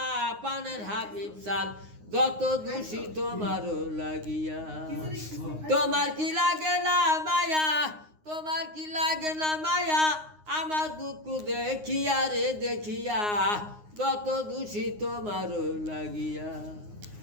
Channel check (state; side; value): late; left; 9.6 ms